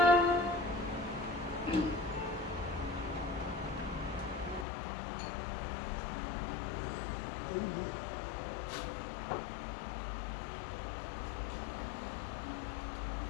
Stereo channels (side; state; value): right; drops out; at 4.7 s